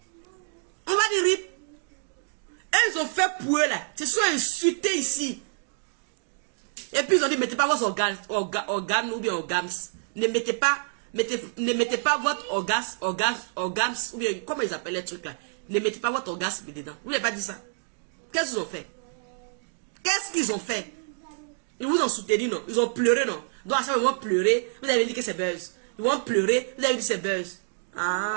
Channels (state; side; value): silent; left; digital silence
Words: On va dire rip. Et ils ont fait pour eux là. Ils se sont insultés ici. Et puis ils ont dit mettez pas vos organes ou bien organes. Ne mettez pas votre orgasme ou bien comment ils appellent les trucs là. Ne mettez pas votre orgasme dedans. Vous n'avez pas dit ça. Qu'est-ce qu'ils ont fait? Qu'est-ce qu'ils ont fait? Ils vous ont soutenu, non? Ils ont pleuré, non? Donc à ça, ils vont pleurer. Vous avez dit que c'est buzz. Ils vont pleurer. Vous avez dit que c'est buzz.